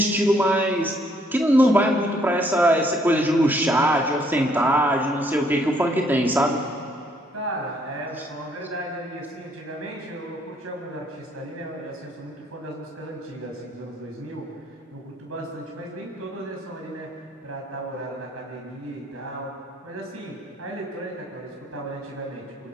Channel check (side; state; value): both; normal; correlation 0.67